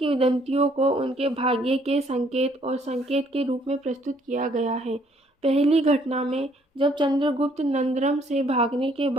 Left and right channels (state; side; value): normal; both; correlation 0.64